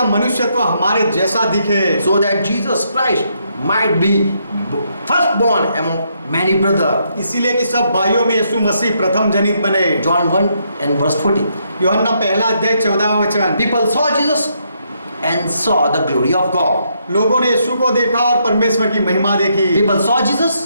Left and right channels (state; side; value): inverted; both; correlation -0.75